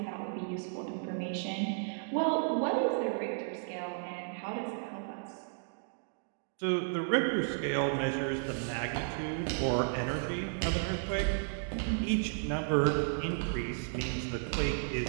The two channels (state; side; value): silent; left; digital silence